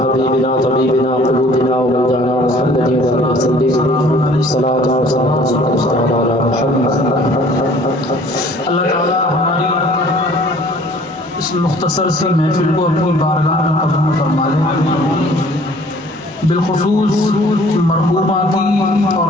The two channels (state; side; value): normal; both; correlation 0.53